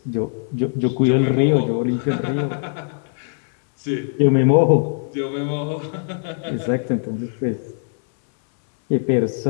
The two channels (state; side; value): silent; right; digital silence